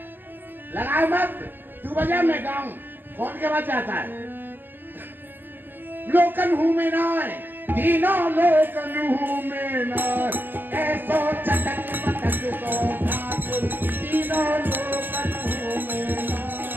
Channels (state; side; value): late; left; 0.090 ms